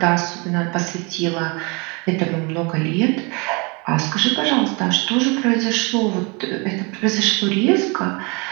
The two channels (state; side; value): quieter; left; 29.7 dB